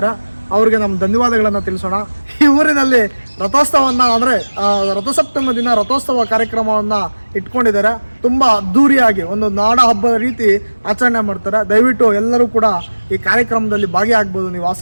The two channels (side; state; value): both; inverted; correlation -1.00